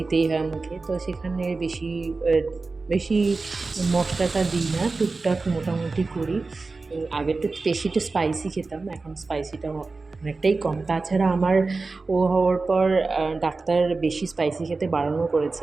হয় মুখে, তো সেখানে বেশি মশলাটা দিই না, টুকটাক মোটামুটি করি। আগে তো বেশি স্পাইসি খেতাম, এখন স্পাইসিটা অনেকটাই কম। তাছাড়া আমার ও হওয়ার পর ডাক্তার বেশি স্পাইসি খেতে বারণও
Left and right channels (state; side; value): quieter; left; 3.8 dB